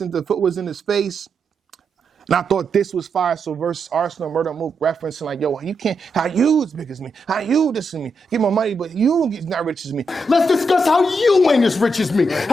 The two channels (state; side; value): normal; both; correlation 0.83